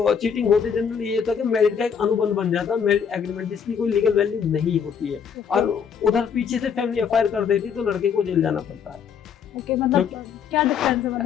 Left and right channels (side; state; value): right; quieter; 7.1 dB